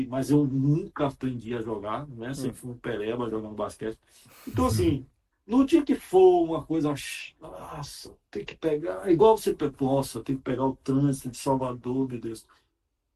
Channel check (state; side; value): identical; both; correlation 1.00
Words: mas eu nunca aprendi a jogar, né? Sempre fui um pereba jogando basquete. Então, assim, no dia que for uma coisa, nossa, tem que pegar, igual você, nossa, tem que pegar o trânsito de Salvador, meu Deus,